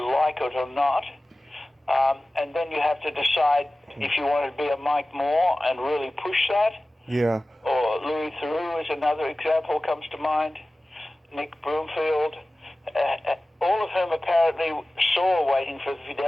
like it or not. And then you have to decide if you want to be a Mike Moore and really push that. Yeah. Or Louis Theroux is another example comes to mind. Nick Broomfield. All of whom apparently saw Waiting for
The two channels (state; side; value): normal; both; correlation 0.97